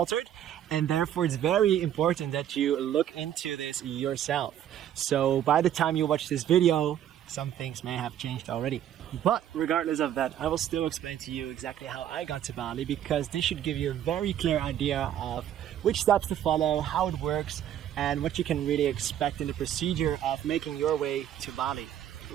and therefore it's very important that you look into this yourself. So by the time you watch this video, some things may have changed already. But regardless of that, I will still explain to you exactly how I got to Bali, because this should give you a very clear idea of which steps to follow, how it works, and what you can really expect in the procedure of making your way to Bali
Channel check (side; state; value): left; quieter; 10.8 dB